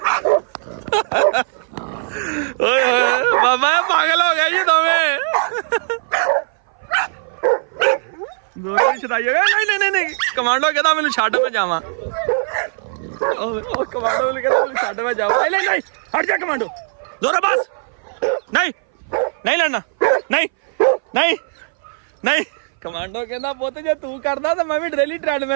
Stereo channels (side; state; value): left; silent; 60 dB below the other